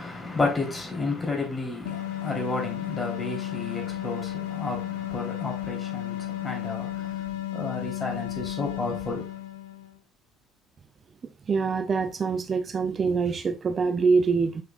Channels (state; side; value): normal; both; correlation 0.61